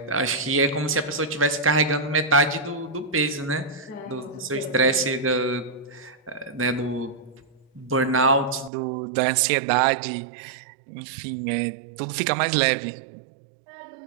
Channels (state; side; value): drops out; left; at 8.7 s